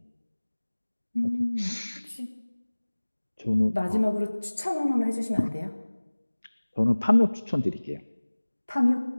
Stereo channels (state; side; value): inverted; both; correlation -1.00